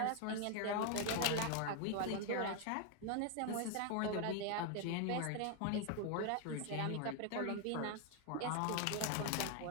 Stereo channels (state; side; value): different; both; correlation 0.01